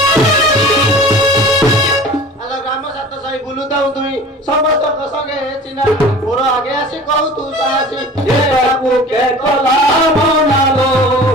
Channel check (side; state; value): both; normal; correlation 0.41